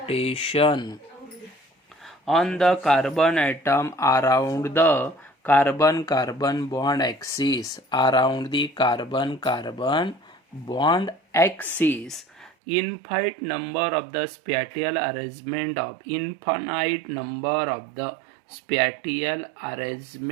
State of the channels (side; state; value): left; drops out; at 12.5 s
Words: on the carbon atom around the carbon bond axis around the carbon bond axis infinite number of the spatial arrangement of infinite number of the spatial